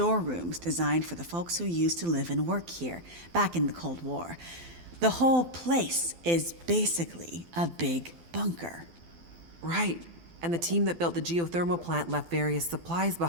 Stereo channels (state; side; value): late; left; 12 ms